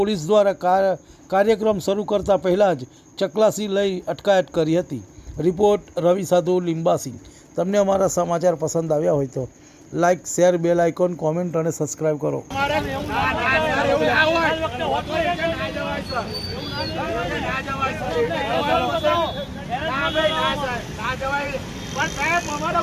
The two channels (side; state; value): both; identical; correlation 1.00